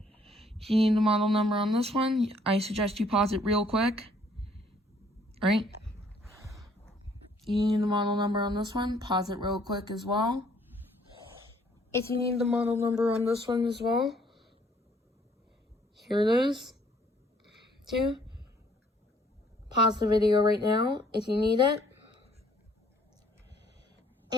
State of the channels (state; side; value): normal; both; correlation 0.63